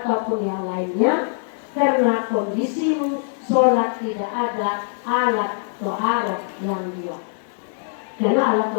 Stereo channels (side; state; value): right; silent; 59 dB below the other